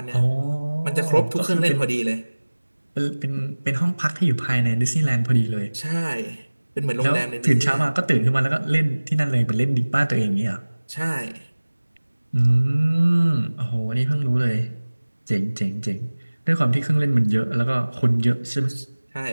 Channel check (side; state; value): both; inverted; correlation -1.00